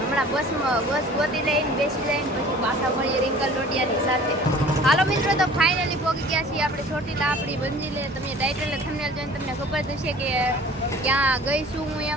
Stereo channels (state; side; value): normal; both; correlation 0.47